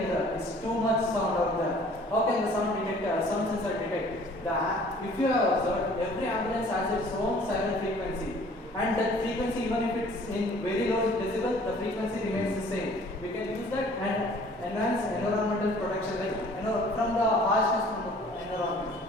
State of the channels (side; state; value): both; normal; correlation 0.53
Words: it's too much sound out there. How can the sound sensor detect? If you have observed, every ambulance has its own siren frequency, and that frequency, even if it's in very low decibel, the frequency remains the same. We can use that and enhance environmental protection, like from the harshness from the environment.